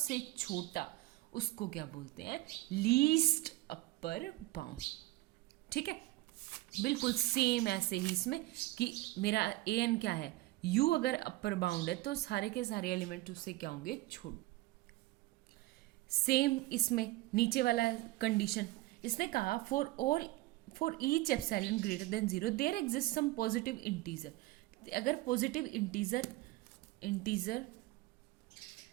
छोटा, उसको क्या बोलते हैं? Least upper bound. ठीक है, बिल्कुल सेम ऐसे ही इसमें कि मेरा ए एन क्या है? यू अगर अपर बाउंड है तो सारे के सारे एलिमेंट उससे क्या होंगे? छोटे। सेम इसमें नीचे वाला कंडीशन, इसने कहा for each epsilon greater than 0 there exist some positive integer. अगर पॉजिटिव इंटीजर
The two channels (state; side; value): quieter; left; 18.8 dB